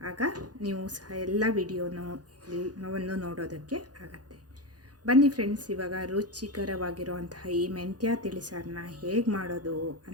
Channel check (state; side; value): late; left; 0.69 ms